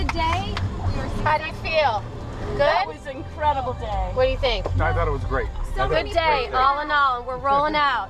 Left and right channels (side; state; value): both; identical; correlation 1.00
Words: day. How do you feel? Good? That was an incredible day. What do you think? I thought it was great. Good day, all in all, and we're rolling out.